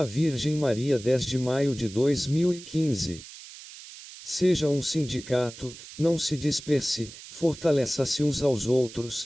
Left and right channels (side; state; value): right; noise; hiss, 16 dB below the sound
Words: Virgem Maria 10 de maio de 2015. Seja um sindicato, não se disperse, fortaleça-se uns aos